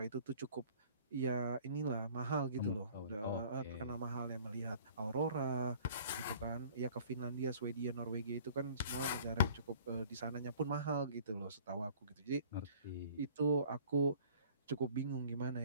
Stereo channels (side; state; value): both; inverted; correlation -0.51